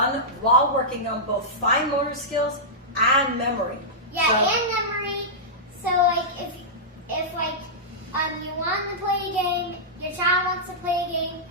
while working on both fine motor skills and memory. Yeah, So- and memory. So like if like you want to play a game, your child wants to play a game,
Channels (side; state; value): both; normal; correlation -0.13